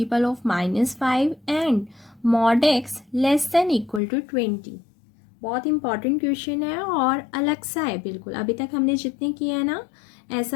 of -5 and mod x less than equal to 20। बहुत इंपॉर्टेंट क्वेश्चन है और अलग सा है बिल्कुल। अभी तक हमने जितने किए हैं ना,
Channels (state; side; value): drops out; right; at 4.0 s